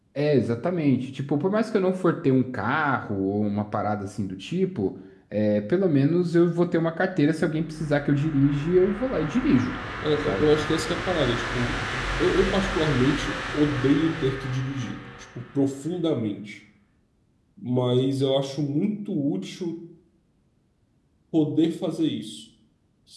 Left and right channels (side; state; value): both; identical; correlation 1.00